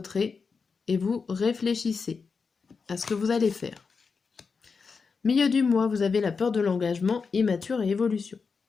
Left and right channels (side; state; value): right; quieter; 5.1 dB